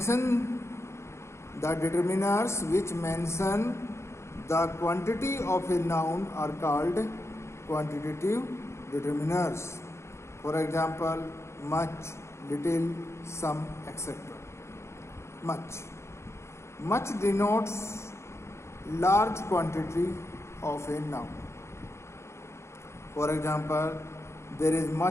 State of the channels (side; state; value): right; late; 0.13 ms